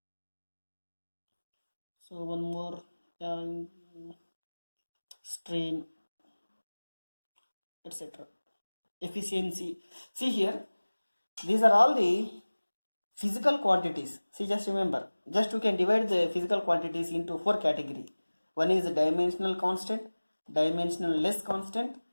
So one more, strain, etc. Efficiency. See here, these are all the physical quantities. See, just remember, just we can divide the physical quantities into 4 categories. One is dimensional constant, dimensional less constant,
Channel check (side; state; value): both; inverted; correlation -1.00